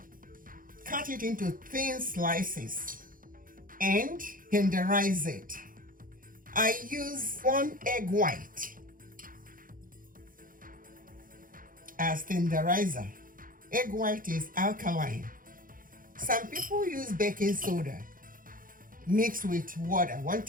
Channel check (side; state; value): left; late; 0.40 ms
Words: Cut it into thin slices and tenderize it. I use 1 egg white as tenderizer. Egg white is alkaline. Some people use baking soda mixed with water. 1